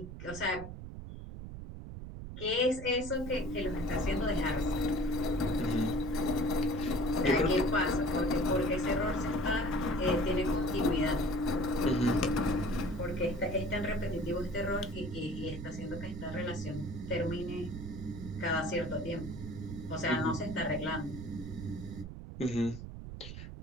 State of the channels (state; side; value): noise; right; rumble, 10 dB below the sound